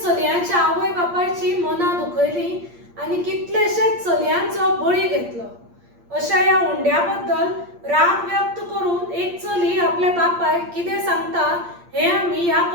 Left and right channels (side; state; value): left; late; 8.6 ms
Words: चलयांच्या आवय बापायची मनां दुखयलीं आनी कितलेशेच चलयांचो बळी घेतलो। अशा ह्या हुंड्या बद्दल राग व्यक्त करून एक चली आपल्या बापायक कितें सांगता हें आमी ह्या